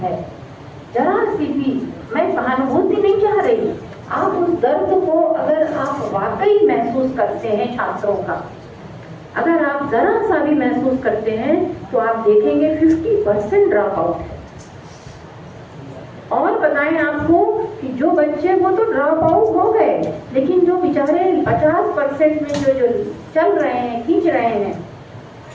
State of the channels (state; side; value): identical; both; correlation 1.00